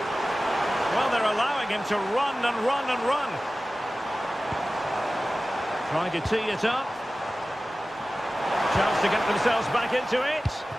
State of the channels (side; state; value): both; normal; correlation 0.96